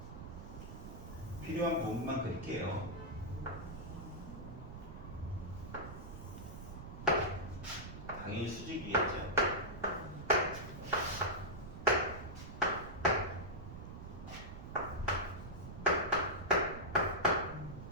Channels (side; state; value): right; noise; rumble, 10 dB below the sound